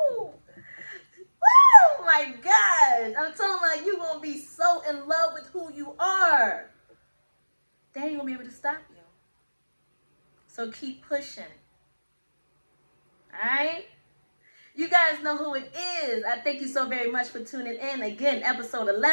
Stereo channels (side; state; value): both; inverted; correlation -1.00